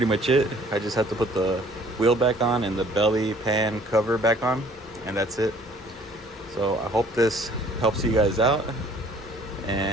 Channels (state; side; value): normal; both; correlation 0.56